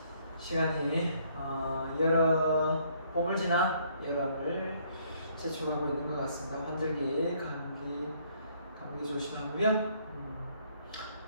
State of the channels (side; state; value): both; inverted; correlation -0.65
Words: 시간이 봄을 지나 여름을 재촉하고 있는 것 같습니다. 환절기, 감기 조심하고요.